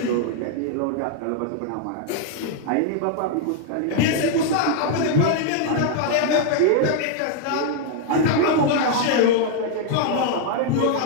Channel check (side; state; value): both; different; correlation 0.00